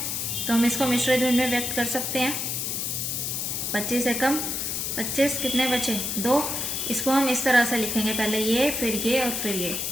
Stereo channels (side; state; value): left; noise; hiss, 2 dB below the sound